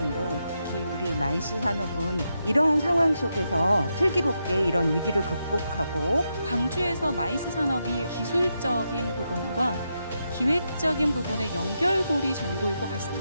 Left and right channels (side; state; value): both; inverted; correlation -0.84